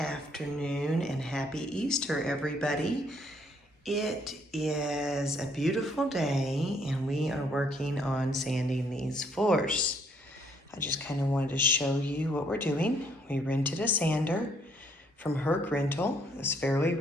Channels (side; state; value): both; normal; correlation 0.67